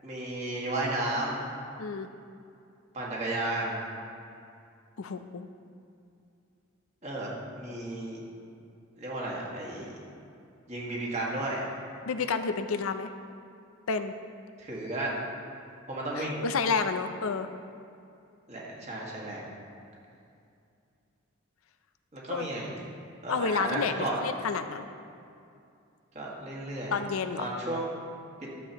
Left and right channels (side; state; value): both; normal; correlation 0.02